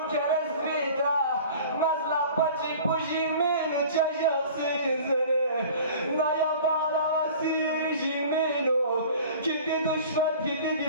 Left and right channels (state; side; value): inverted; both; correlation -0.43